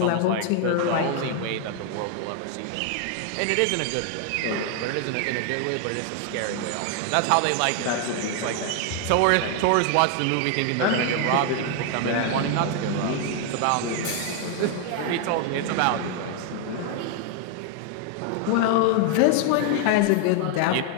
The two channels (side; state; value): both; different; correlation 0.00